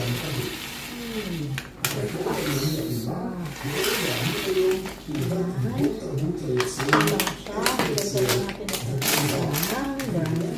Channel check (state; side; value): identical; both; correlation 1.00